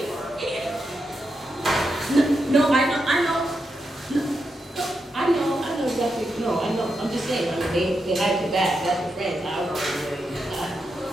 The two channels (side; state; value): both; normal; correlation 0.85